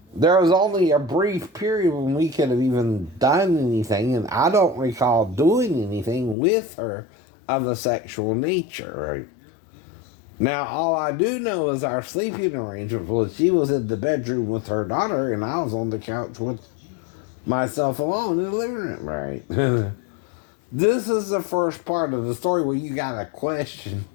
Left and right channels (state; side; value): drops out; right; at 6.4 s